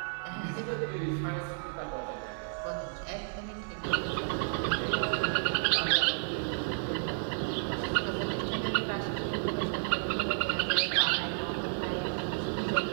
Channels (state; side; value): silent; left; digital silence